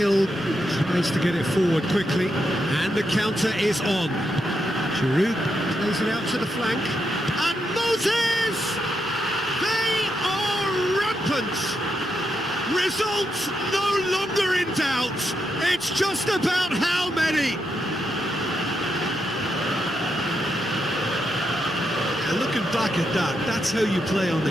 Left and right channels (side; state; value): both; normal; correlation 0.82